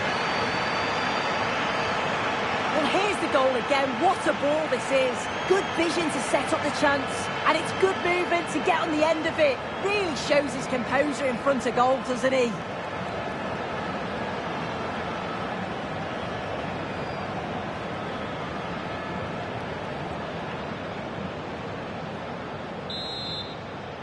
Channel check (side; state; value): both; identical; correlation 1.00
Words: Well, here's the goal again. What a ball this is. Good vision to set up the chance. And it's good movement to get on the end of it. Really shows his composure in front of goal, doesn't he?